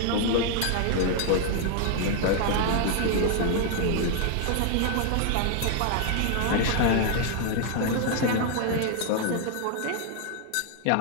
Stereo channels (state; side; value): different; both; correlation 0.00